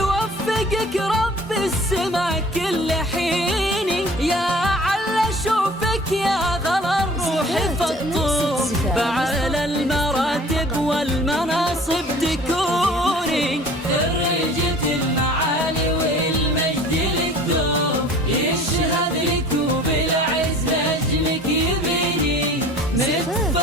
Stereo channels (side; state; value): both; normal; correlation 0.47